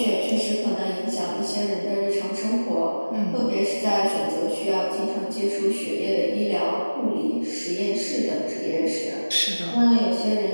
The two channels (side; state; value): both; inverted; correlation -1.00